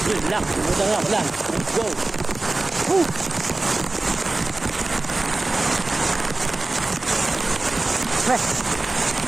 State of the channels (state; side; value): quieter; left; 3.1 dB